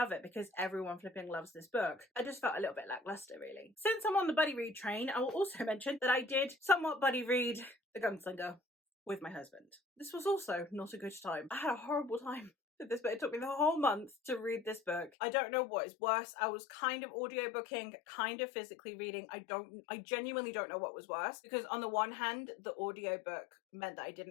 it, because everyone flipping loves this book, I just felt a little bit lackluster, really. Since I'm on the buddy read train, I will also mention that I did somewhat buddy read The Gunslinger with my husband. This was also not a good time. I had a horrible time with this book. It took me the whole month to read this book. I don't know what is worse. I was kind of audiobooking, kind of physically reading. I genuinely don't know what was worse, because on the one hand, the audiobook meant that I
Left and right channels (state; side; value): drops out; right; at 15.1 s